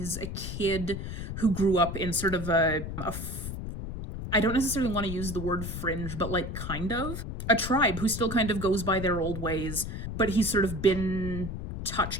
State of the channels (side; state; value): left; noise; rumble, 6 dB below the sound